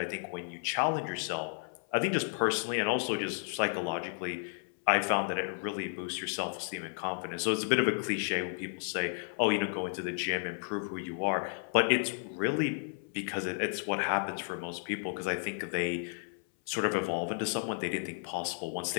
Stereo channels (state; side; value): silent; right; 56 dB below the other